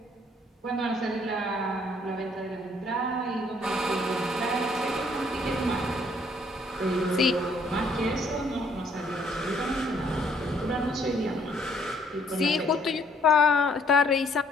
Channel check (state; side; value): normal; both; correlation 0.64